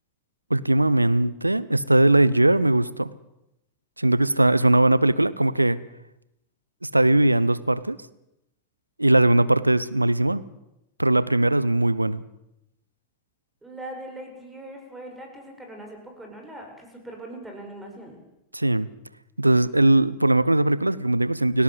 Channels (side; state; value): both; inverted; correlation -0.97